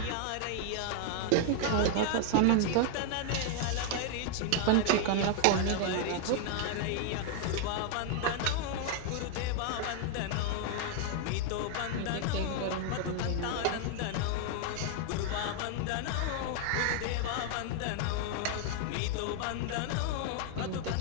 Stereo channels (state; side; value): different; both; correlation 0.00